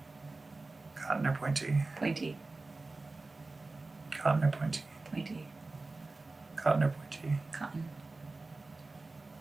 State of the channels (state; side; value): quieter; left; 3.4 dB